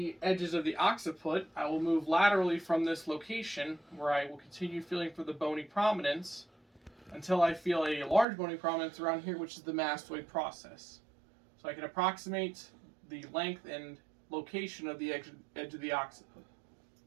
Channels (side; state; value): left; drops out; at 8.2 s